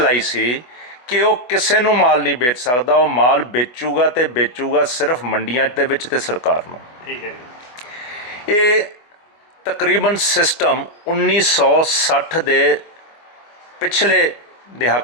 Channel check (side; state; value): right; late; 24 ms